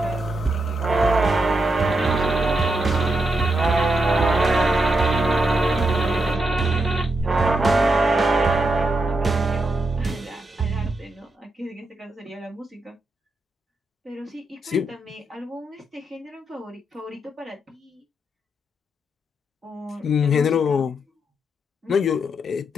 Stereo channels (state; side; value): normal; both; correlation 0.83